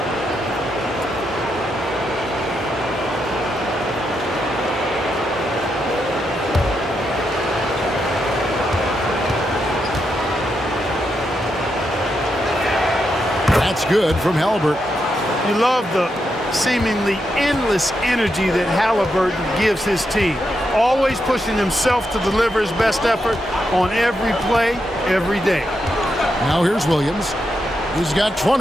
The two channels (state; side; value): normal; both; correlation 0.83